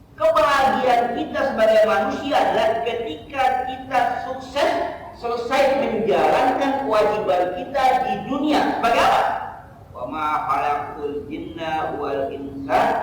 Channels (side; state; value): both; identical; correlation 1.00